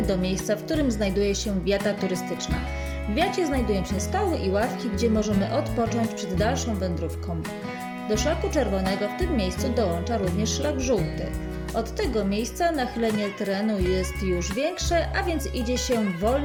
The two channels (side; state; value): both; identical; correlation 1.00